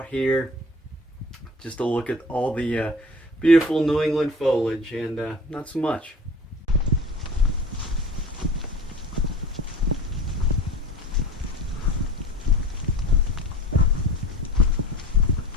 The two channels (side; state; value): both; normal; correlation 0.40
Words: here. Just to look at all the beautiful New England foliage, and not so much.